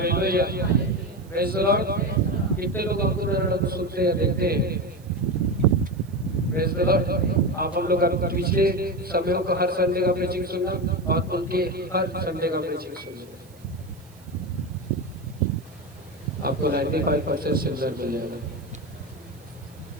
Praise the Lord. कितने लोग हमको सुनते हैं, देखते हैं? Praise the Lord. आप हम लोग पिछले समयों को हर संडे का प्रीचिंग सुनना और उनके हर संडे का प्रीचिंग सुनना। आपको 95% सिल्वर मिल जाएगा।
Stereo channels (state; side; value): noise; right; hiss, 28 dB below the sound